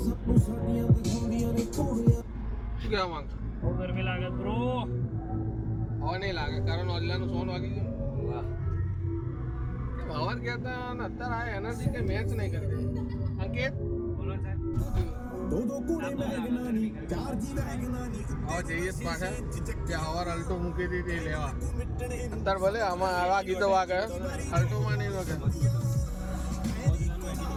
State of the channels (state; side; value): identical; both; correlation 1.00